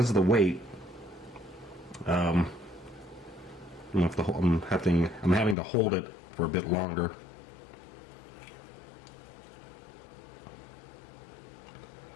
of the weight, I'm having to hold it for a bit longer.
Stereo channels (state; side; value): drops out; right; at 5.6 s